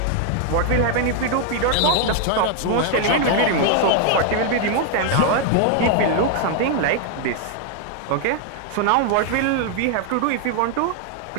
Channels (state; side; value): different; both; correlation 0.00